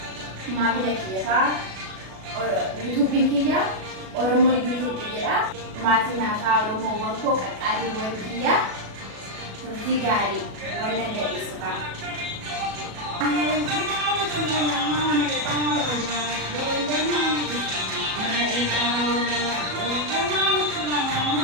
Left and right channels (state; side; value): late; left; 37 ms